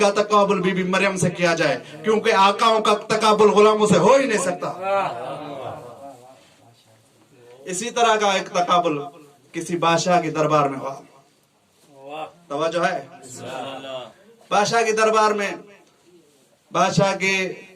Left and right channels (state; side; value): identical; both; correlation 1.00